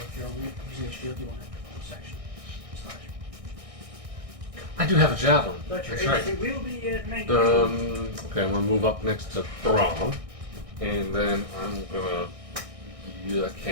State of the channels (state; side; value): late; left; 1.6 ms